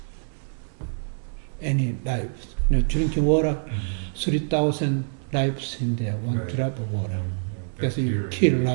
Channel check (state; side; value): silent; left; digital silence